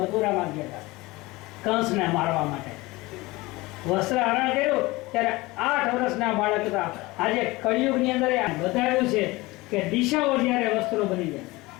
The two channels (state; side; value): quieter; right; 21.4 dB